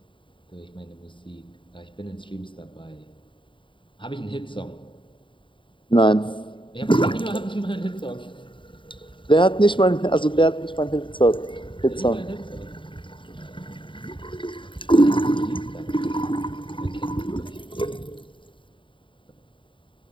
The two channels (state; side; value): late; right; 0.24 ms